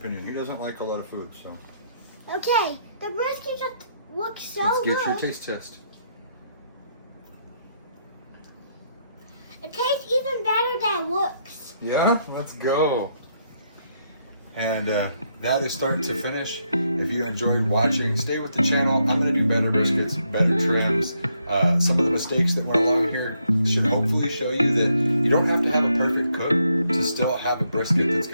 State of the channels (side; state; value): both; inverted; correlation -0.76